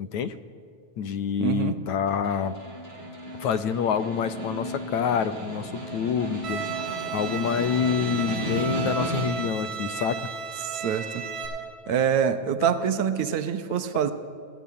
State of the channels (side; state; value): right; late; 9.2 ms